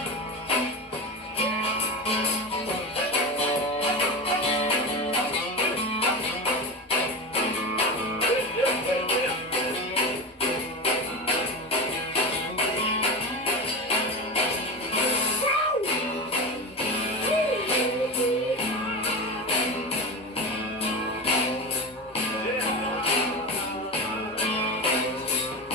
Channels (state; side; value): normal; both; correlation 0.22